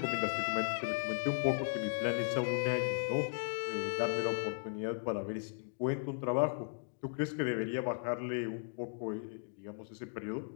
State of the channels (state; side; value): silent; right; digital silence